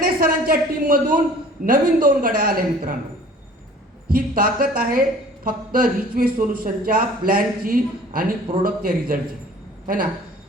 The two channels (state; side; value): normal; both; correlation 0.49